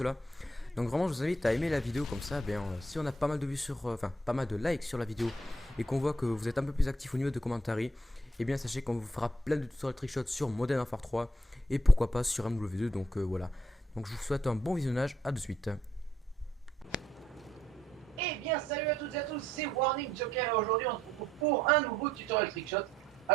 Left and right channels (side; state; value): both; normal; correlation 0.71